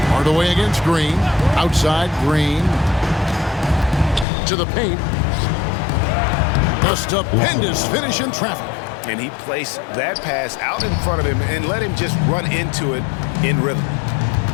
Hardaway against Green. Outside Green. To the paint. A stupendous finish in traffic. And he placed that pass out in front of him and let him just run into it in rhythm.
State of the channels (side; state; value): right; drops out; at 4.2 s